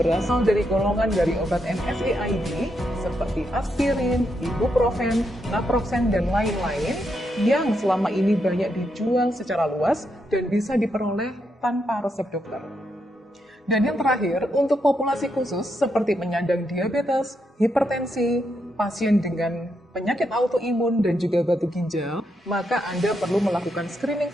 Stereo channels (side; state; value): both; normal; correlation 0.81